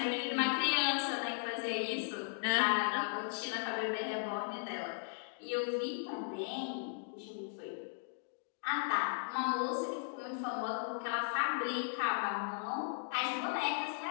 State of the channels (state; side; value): silent; right; digital silence